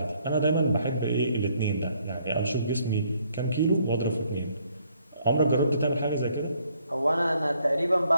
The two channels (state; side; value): inverted; both; correlation -0.68